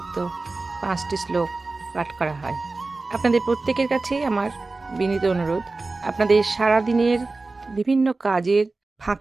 ৫টি শ্লোক পাঠ করা হয়। আপনাদের প্রত্যেকের কাছেই আমার বিনীত অনুরোধ, আপনাদের সারাদিনের বিভিন্ন কাজের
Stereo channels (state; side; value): quieter; left; 3.5 dB